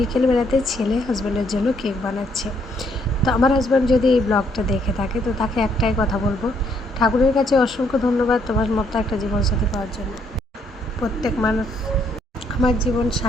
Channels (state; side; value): normal; both; correlation 0.70